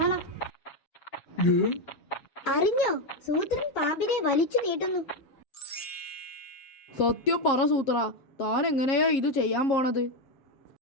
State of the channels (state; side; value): late; right; 7.4 ms